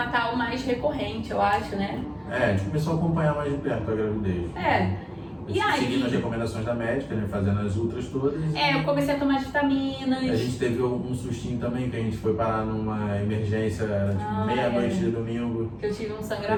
mais recorrente, eu acho, né? A gente começou a acompanhar mais de perto a gravidez. E aí, seguindo as recomendações da médica, né? Fazendo as ultras todas. Eu comecei a tomar vitaminas. A gente teve um sustinho também, que a gente foi parar numa emergência, tipo meia-noite de domingo. Que eu tive um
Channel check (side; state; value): both; identical; correlation 1.00